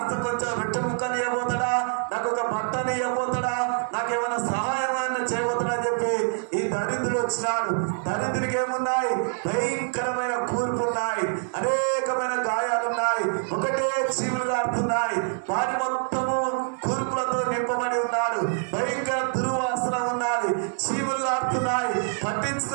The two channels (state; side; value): silent; left; 61 dB below the other